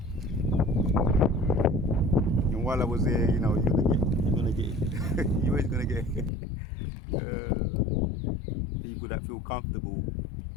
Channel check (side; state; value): right; drops out; at 6.3 s